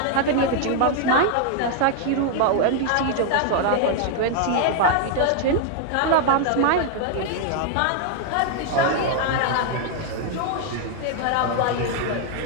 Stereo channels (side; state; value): both; different; correlation 0.00